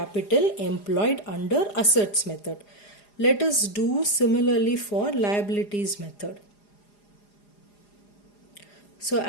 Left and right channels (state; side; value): late; right; 4.9 ms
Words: employed under assets method. Let us do similarly for liabilities method. So